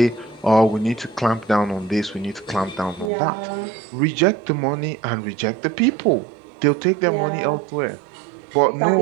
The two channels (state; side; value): drops out; left; at 3.1 s